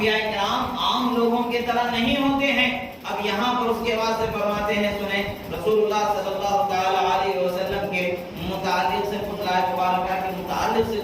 کرام عام لوگوں کی طرح نہیں ہوتے ہیں۔ اب یہاں پر اس کے بعد سے فرماتے ہیں، سنیں رسول اللہ صلی اللہ تعالی علیہ وسلم کے متعلق سے فضلہ مبارکہ کے متعلق سے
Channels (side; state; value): both; identical; correlation 1.00